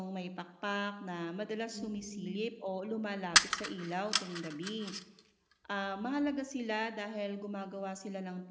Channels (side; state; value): both; identical; correlation 1.00